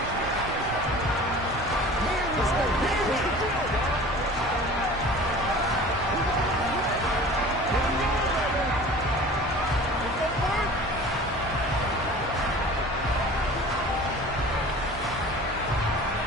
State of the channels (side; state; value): both; normal; correlation 0.42